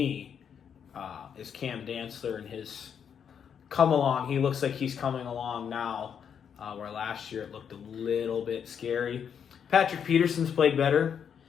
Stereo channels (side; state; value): right; quieter; 7.7 dB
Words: is Cam Dantzler and his come along. He looks like he's coming along now. Where last year it looked a little bit scary. Patrick Peterson's played better.